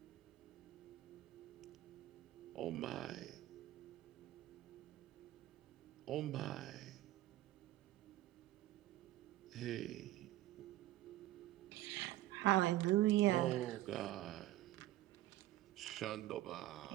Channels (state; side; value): quieter; left; 15.5 dB